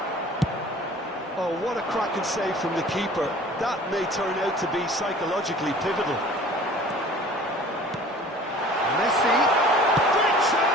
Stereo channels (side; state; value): both; normal; correlation 0.46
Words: Oh, what a cracking save from the keeper. That may turn out to be psychologically pivotal. Messi. Great